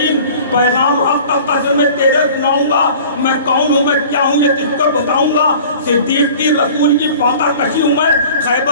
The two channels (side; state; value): both; inverted; correlation -0.45